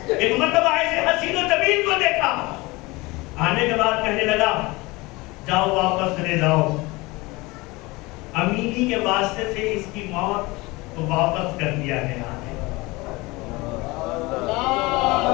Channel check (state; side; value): quieter; right; 23.0 dB